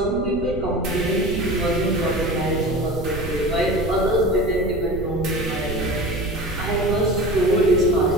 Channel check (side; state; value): right; noise; rumble, 9 dB below the sound